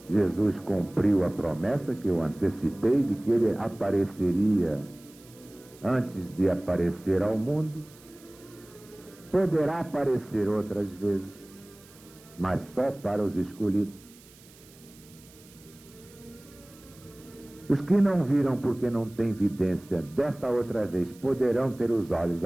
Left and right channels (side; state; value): right; noise; hiss, 24 dB below the sound